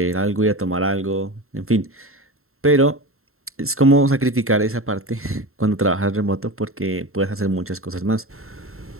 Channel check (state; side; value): late; left; 0.62 ms